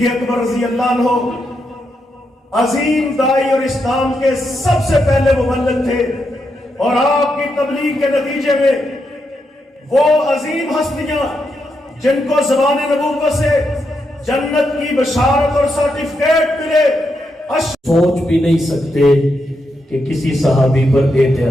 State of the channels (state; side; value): normal; both; correlation 0.83